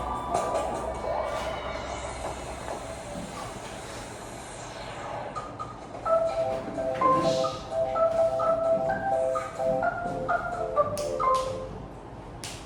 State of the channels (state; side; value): identical; both; correlation 1.00